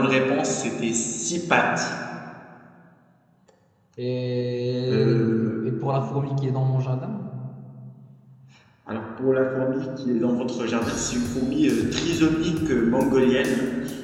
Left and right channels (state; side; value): identical; both; correlation 1.00